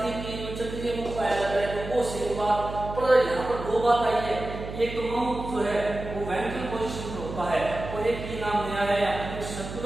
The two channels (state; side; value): noise; right; hum, 9 dB below the sound